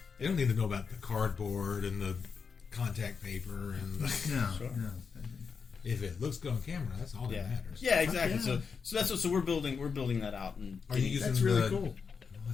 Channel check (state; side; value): quieter; right; 5.7 dB